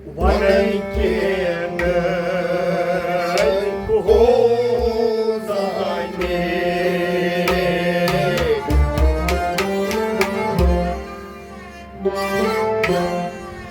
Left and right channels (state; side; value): identical; both; correlation 1.00